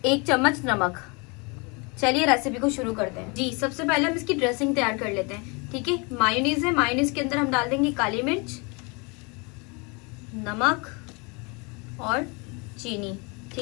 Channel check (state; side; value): quieter; right; 30.2 dB